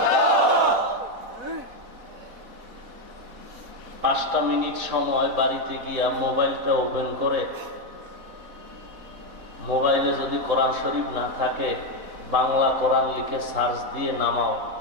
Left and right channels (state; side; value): late; left; 4.1 ms